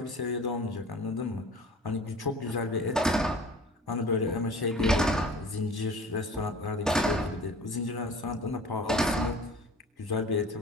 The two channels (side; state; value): both; normal; correlation 0.44